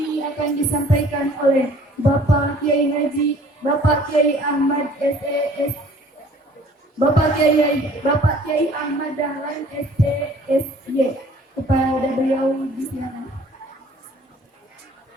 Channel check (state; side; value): normal; both; correlation 0.53